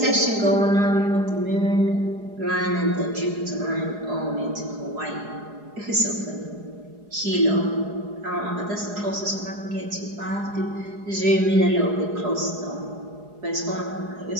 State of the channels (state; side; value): late; left; 4.8 ms